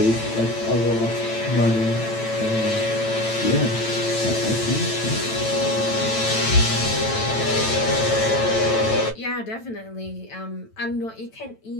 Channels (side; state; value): right; late; 9.0 ms